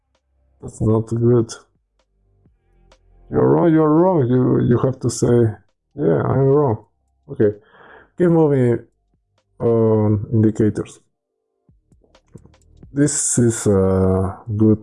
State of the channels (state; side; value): identical; both; correlation 1.00